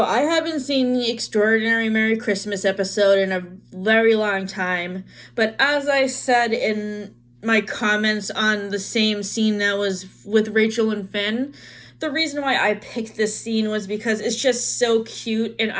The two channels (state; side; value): identical; both; correlation 1.00